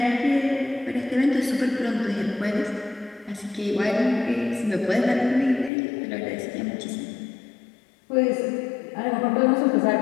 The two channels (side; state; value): right; drops out; at 5.7 s